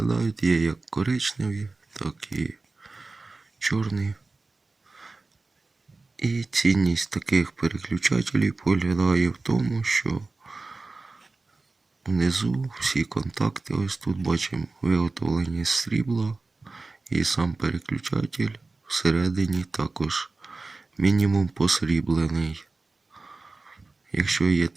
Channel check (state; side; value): quieter; left; 3.6 dB